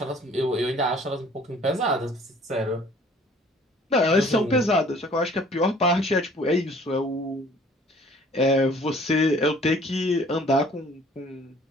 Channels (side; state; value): both; normal; correlation 0.54